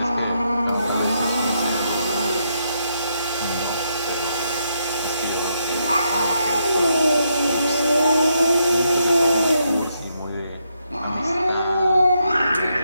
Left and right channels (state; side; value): inverted; both; correlation -0.79